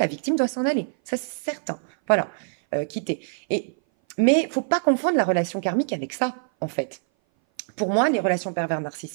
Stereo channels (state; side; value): silent; left; 58 dB below the other